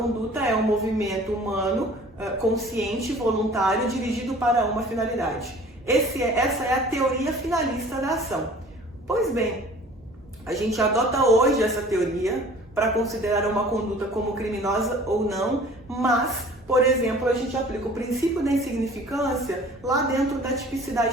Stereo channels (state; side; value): normal; both; correlation 0.48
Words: é um movimento humano consciente, voluntário, dirigido para uma finalidade. Essa é a teoria finalista da ação. Pois bem, a gente adota hoje essa teoria para considerar uma conduta como criminosa ou não, mas, por exemplo, a gente aplica o princípio da insignificância lá dentro da